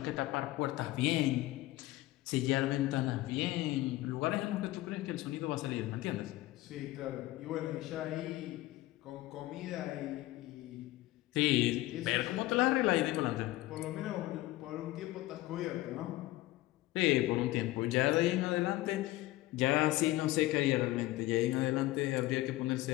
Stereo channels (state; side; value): quieter; right; 17.6 dB